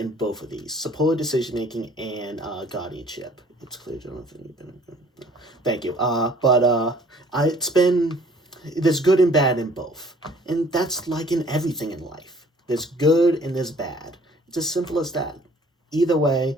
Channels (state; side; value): normal; both; correlation 0.55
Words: both of these: supported decision making and guardianship. It's clear, Jonathan. Thank you. There's good and bad in both, and that's like in everything in life. There's good and there's bad. It's as simple as that. Either way,